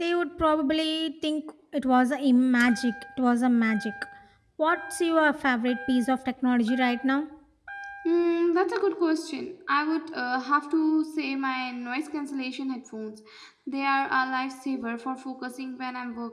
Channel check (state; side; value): identical; both; correlation 1.00